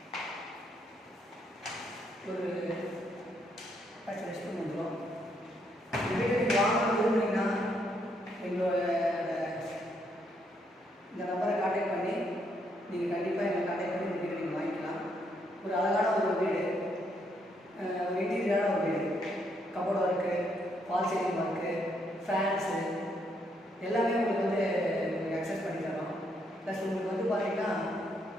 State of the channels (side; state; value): both; normal; correlation 0.74